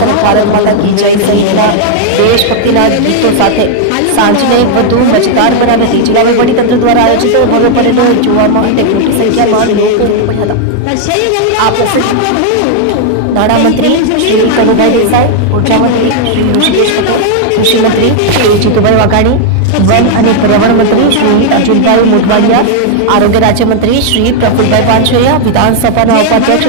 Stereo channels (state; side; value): different; both; correlation 0.00